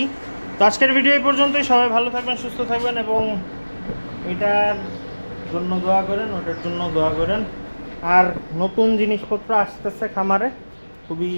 তো আজকের ভিডিও এই পর্যন্তই। সবাই ভালো থাকবেন, সুস্থ থাকবেন, এবং এটার জন্য দোয়া করেন, ওটার জন্য দোয়া করেন। আর নতুন জিনিসপত্র আসতেছে খামারে খুবই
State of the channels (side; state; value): both; inverted; correlation -1.00